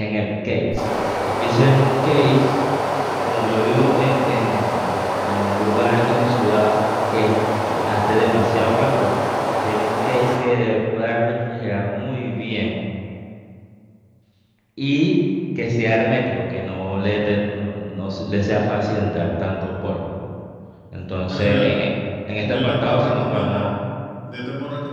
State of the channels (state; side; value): identical; both; correlation 1.00